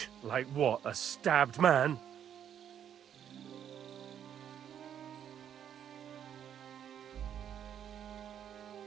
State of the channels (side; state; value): left; quieter; 9.3 dB